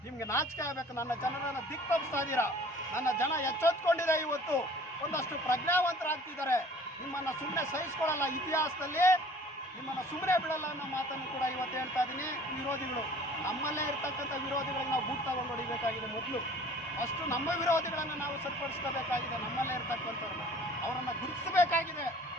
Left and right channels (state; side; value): normal; both; correlation 0.49